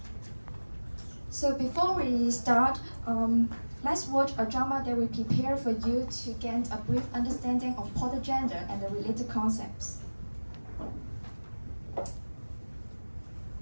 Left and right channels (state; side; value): inverted; both; correlation -1.00